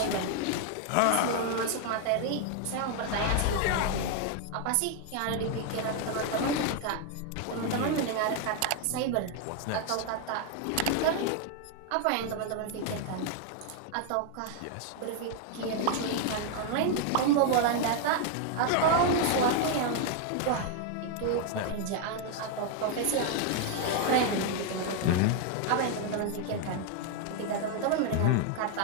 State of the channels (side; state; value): both; different; correlation 0.00